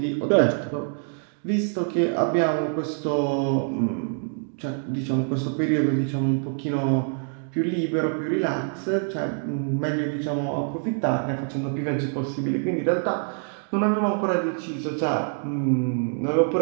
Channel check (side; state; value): left; silent; 57 dB below the other